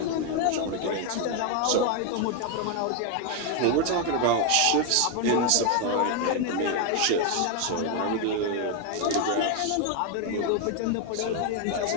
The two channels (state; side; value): different; both; correlation 0.01